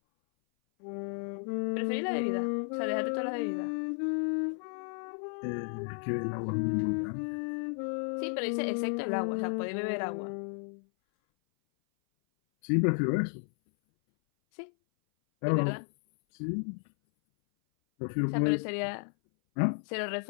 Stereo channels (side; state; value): right; silent; 56 dB below the other